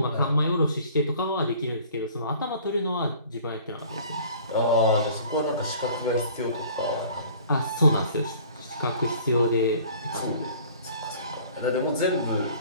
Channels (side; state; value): both; inverted; correlation -0.50